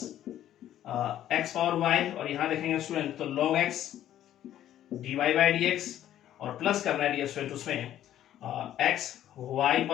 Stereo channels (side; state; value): right; quieter; 11.9 dB